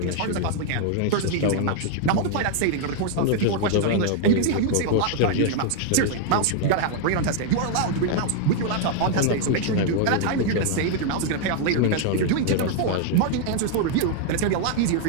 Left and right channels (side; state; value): both; different; correlation 0.00